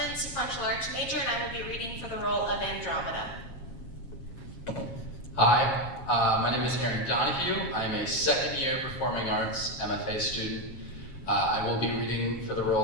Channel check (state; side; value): late; right; 7.4 ms